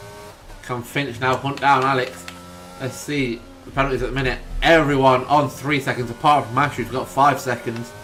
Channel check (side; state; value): both; identical; correlation 1.00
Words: Can Finch now hunt down Alex? Let's see the penalties at the minute. Everyone on 3 seconds apart from Ash, who's got 5 seconds.